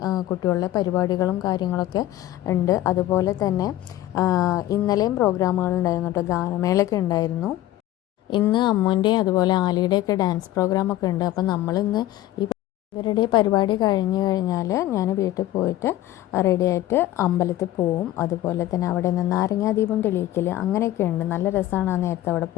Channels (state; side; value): quieter; right; 14.5 dB